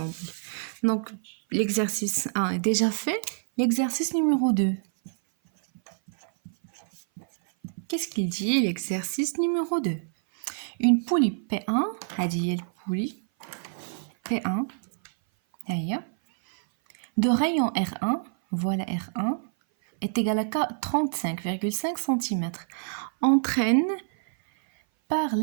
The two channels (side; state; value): left; silent; 57 dB below the other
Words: دونك ليكزارسيس 1 ديجا في. L'exercice numéro 2. Qu'est-ce qu'il dit l'exercice numéro 2? Une poulie P1, هذه البولي P1 هيا de rayon R1, voilà R1 est égal à 35,5 cm, entraîne par